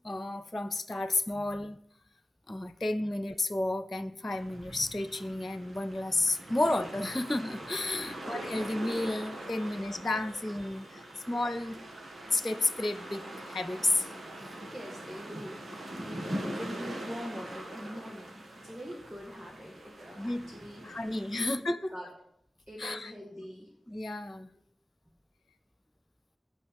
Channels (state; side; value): normal; both; correlation 0.94